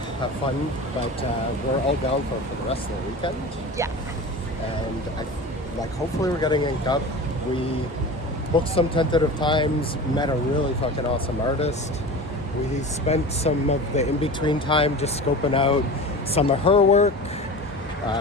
have fun, but we're all down for the rest of the weekend. Yeah. And hopefully we're getting inked up. We booked some tentative times, met a really fucking awesome artist. We spent some of the in-between time just scoping out some of her work,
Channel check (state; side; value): normal; both; correlation 0.33